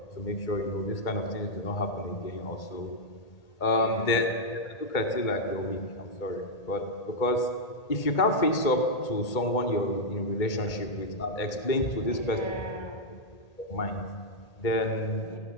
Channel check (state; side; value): late; right; 2.2 ms